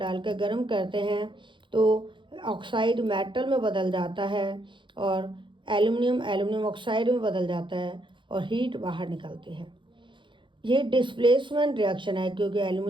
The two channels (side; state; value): left; late; 0.23 ms